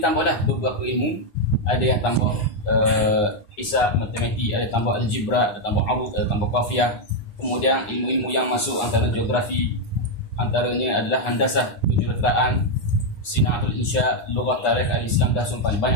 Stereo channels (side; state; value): right; late; 9.7 ms